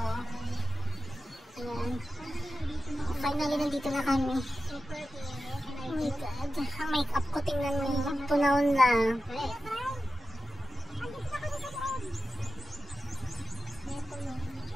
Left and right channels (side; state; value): both; normal; correlation 0.91